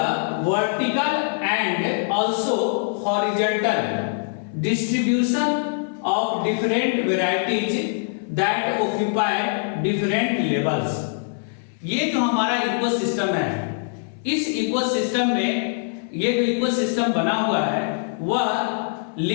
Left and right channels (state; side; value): silent; right; 63 dB below the other